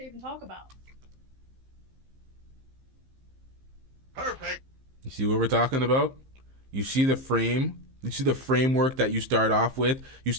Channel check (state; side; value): late; left; 15 ms